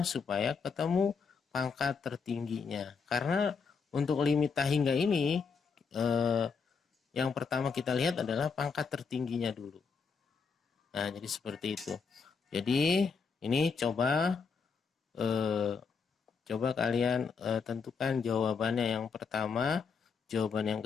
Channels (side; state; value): right; quieter; 5.4 dB